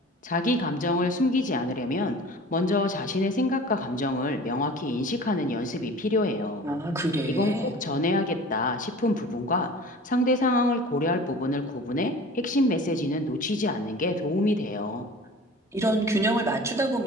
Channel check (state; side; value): normal; both; correlation 0.41